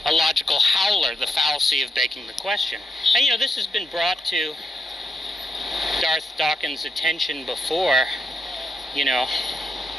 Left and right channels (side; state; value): both; normal; correlation 0.83